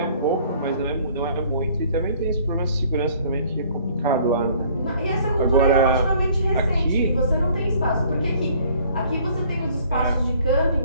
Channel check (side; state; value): both; inverted; correlation -0.57